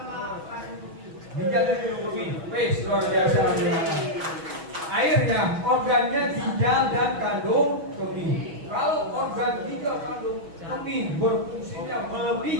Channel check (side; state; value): left; late; 6.2 ms